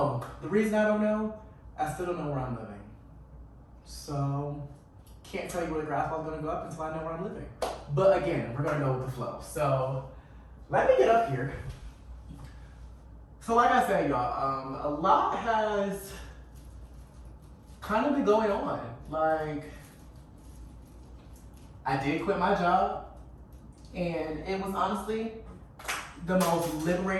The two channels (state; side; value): identical; both; correlation 1.00